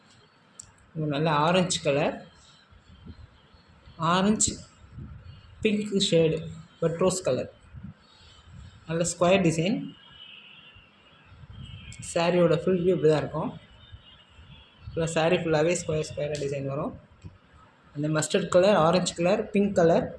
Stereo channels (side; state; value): both; identical; correlation 1.00